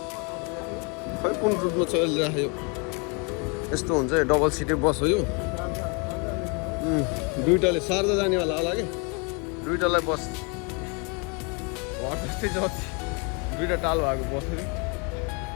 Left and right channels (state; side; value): quieter; right; 33.4 dB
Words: खै कुन रुटमा चलिरहेको यस्तो हुन्छ डबल सिटे बस हो यो दुइटाले सार्दा जानेवाला होला कि दुइटालाई बस घर जस्तै जति दुइटा टाल भएको बस